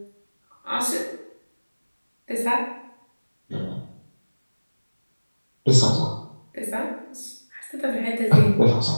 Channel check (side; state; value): both; inverted; correlation -1.00